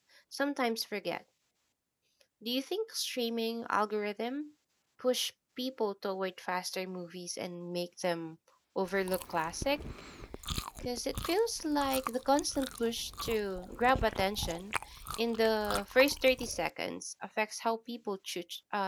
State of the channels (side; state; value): both; identical; correlation 1.00